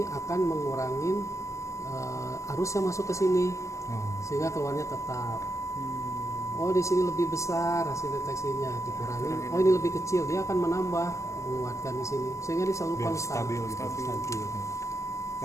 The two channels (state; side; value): late; right; 0.15 ms